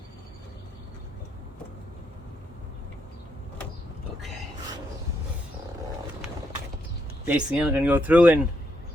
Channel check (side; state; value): both; normal; correlation 0.78